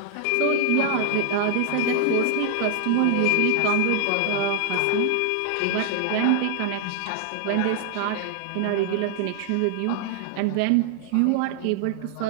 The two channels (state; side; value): different; both; correlation 0.00